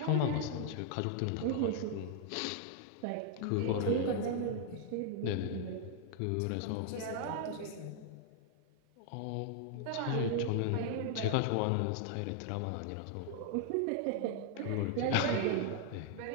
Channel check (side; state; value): both; different; correlation 0.00